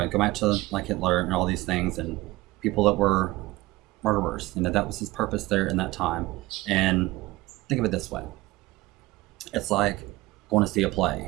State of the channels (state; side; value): quieter; left; 19.6 dB